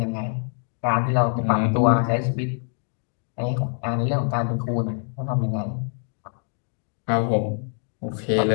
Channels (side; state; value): right; silent; 55 dB below the other